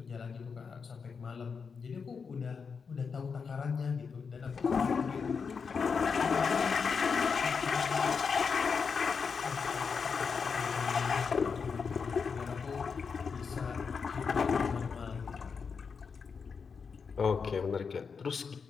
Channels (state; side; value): quieter; right; 5.7 dB